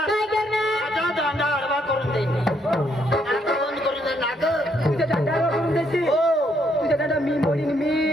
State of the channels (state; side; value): normal; both; correlation 0.72